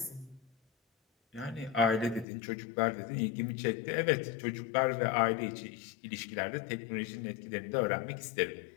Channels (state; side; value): drops out; right; at 2.2 s